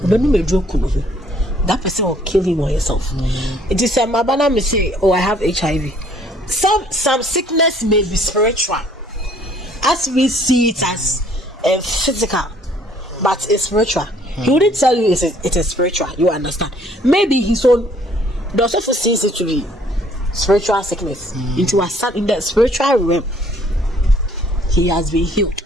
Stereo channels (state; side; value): normal; both; correlation 0.60